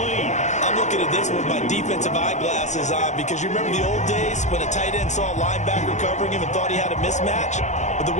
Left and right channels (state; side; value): late; right; 0.34 ms